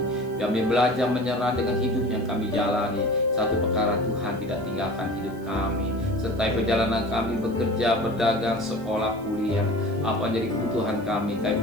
belajar menyerah dengan hidup yang kami jalani. Satu perkara, Tuhan tidak tinggalkan hidup kami. Serta perjalanan kami bekerja, berdagang, sekolah, kuliah, apa jadi kebutuhan kami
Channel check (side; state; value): right; noise; hiss, 26 dB below the sound